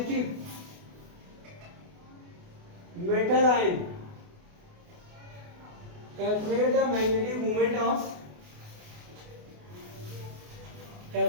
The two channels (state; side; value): late; left; 28 ms